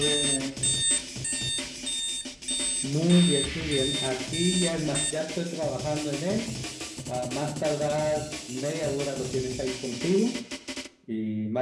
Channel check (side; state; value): both; identical; correlation 1.00